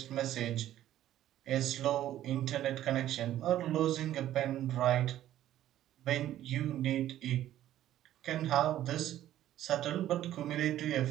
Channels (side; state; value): left; quieter; 12.7 dB